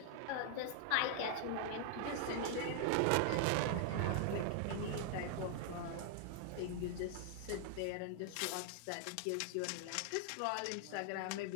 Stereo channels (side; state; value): both; different; correlation 0.00